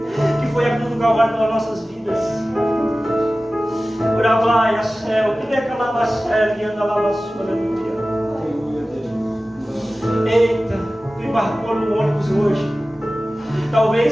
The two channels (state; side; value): normal; both; correlation 0.96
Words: que foi a cruz do Calvário pelas nossas vidas. Bravlaia, céu, que decalava a sério e anda lá na sua, aleluia. Eita, tu embarcou no ônibus hoje.